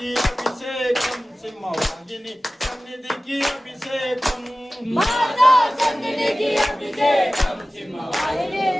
అభిషేకం సింహవాహిని సన్నిధికి అభిషేకం మాతా సన్నిధికి అభిషేకం సింహవాహిని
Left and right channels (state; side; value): normal; both; correlation 0.96